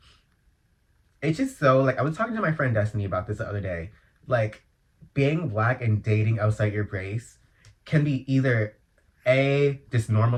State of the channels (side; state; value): both; identical; correlation 1.00